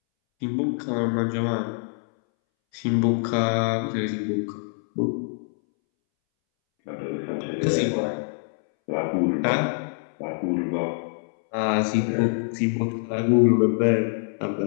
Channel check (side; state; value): right; silent; 62 dB below the other